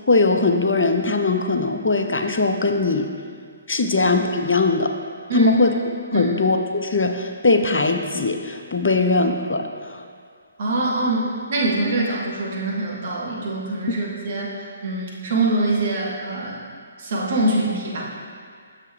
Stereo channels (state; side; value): inverted; both; correlation -0.44